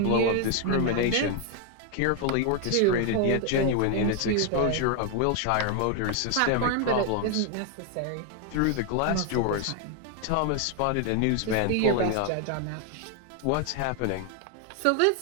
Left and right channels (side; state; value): both; different; correlation 0.00